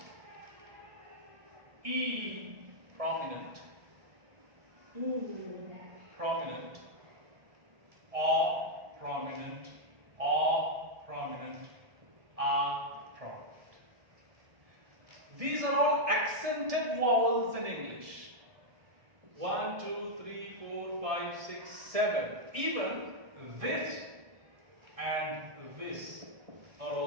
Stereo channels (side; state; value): left; late; 1.6 ms